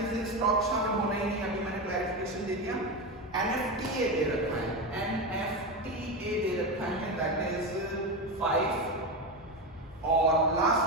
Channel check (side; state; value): both; normal; correlation 0.17